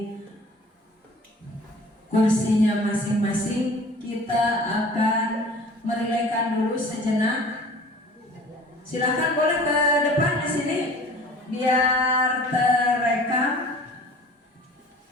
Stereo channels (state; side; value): normal; both; correlation 0.45